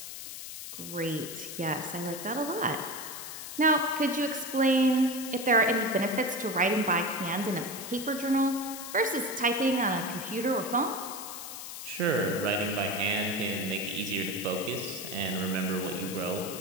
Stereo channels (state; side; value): noise; left; hiss, 9 dB below the sound